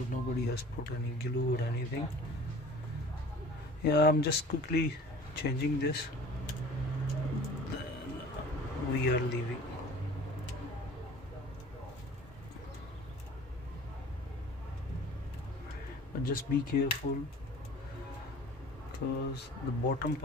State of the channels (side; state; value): both; normal; correlation 0.45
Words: nobody has put any glue or anything. Yeah, I'm just quickly changing this, then we are leaving. But just be careful because the bottom